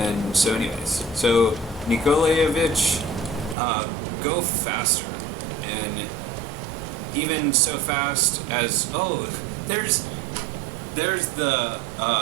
so anyways, so Nikolayevich, go faster. And even so fast as, there's the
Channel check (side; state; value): left; drops out; at 3.6 s